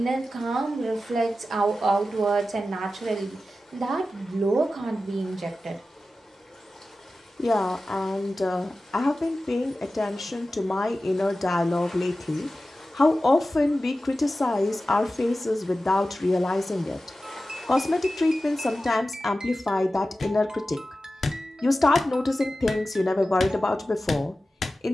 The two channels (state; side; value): normal; both; correlation 0.94